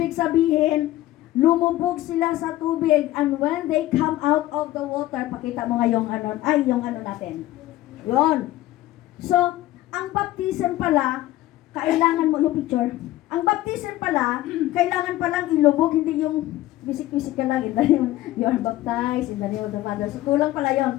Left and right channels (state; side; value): quieter; right; 15.8 dB